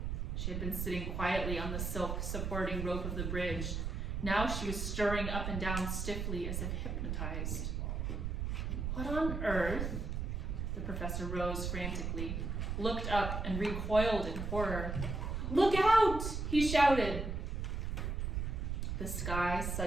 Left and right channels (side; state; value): right; noise; rumble, 2 dB below the sound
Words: She had been sitting quietly on the silk supporting rope of the bridge. Now she was stirring up and down stiffly as if hypnotized. "What on earth?" The professor rose frantically, looked up, and recoiled in horror. "Look out!" he shouted. The sky